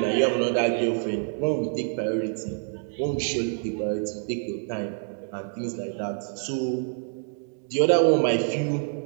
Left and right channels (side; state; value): left; silent; 60 dB below the other